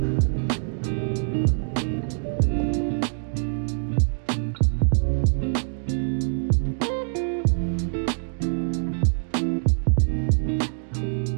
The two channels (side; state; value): left; silent; digital silence